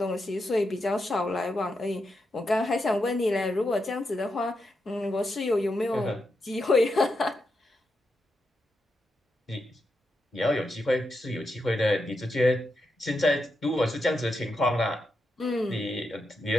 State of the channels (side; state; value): both; normal; correlation 0.85